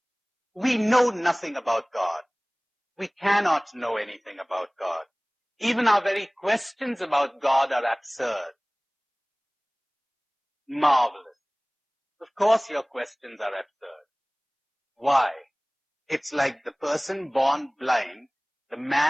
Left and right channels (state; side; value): identical; both; correlation 1.00